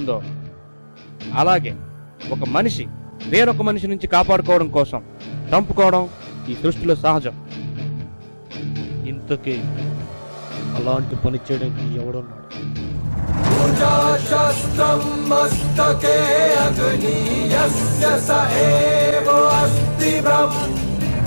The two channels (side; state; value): both; inverted; correlation -1.00